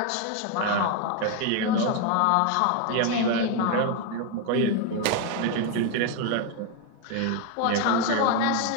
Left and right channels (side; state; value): both; different; correlation 0.01